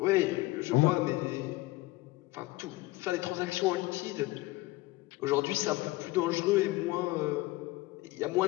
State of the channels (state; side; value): quieter; right; 20.0 dB